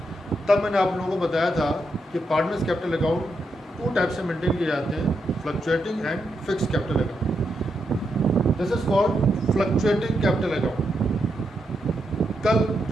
तब मैंने आप लोगों को बताया था कि पार्टनर्स कैपिटल अकाउंट 2 टाइप से मेंटेन किए जाते हैं, fluctuating and fix capital account. This is called fluctuating capital account. कल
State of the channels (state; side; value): normal; both; correlation 0.83